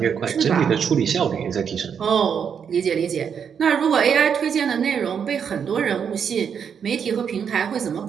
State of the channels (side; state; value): left; quieter; 7.3 dB